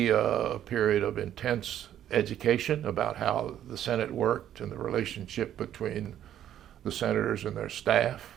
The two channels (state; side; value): quieter; left; 11.0 dB